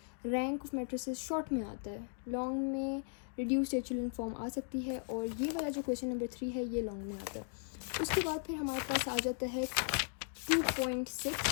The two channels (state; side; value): silent; right; 53 dB below the other